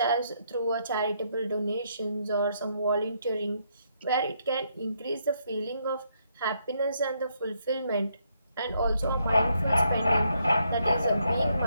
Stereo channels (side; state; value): both; inverted; correlation -0.75